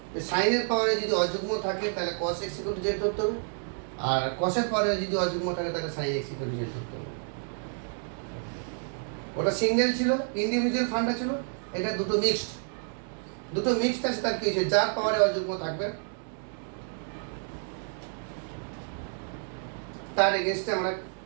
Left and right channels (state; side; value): silent; left; 58 dB below the other